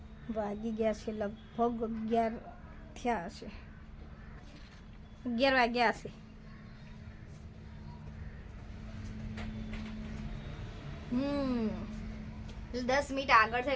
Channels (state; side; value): identical; both; correlation 1.00